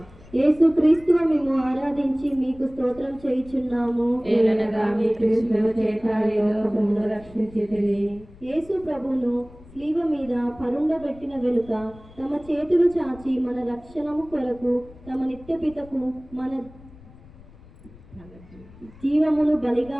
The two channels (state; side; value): noise; left; rumble, 22 dB below the sound